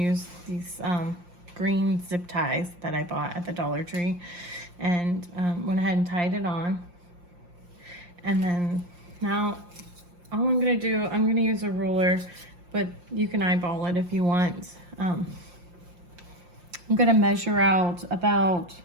these green zip ties that I bought at the Dollar Tree, and went ahead and tied it on. And then now all I'm gonna do, I'm gonna use a ruler, but you can eyeball it if you want. I'm gonna measure out about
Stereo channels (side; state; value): left; late; 5.7 ms